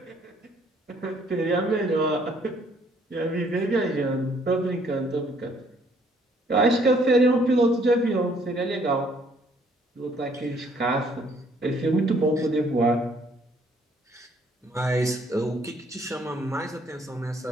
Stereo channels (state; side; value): normal; both; correlation 0.64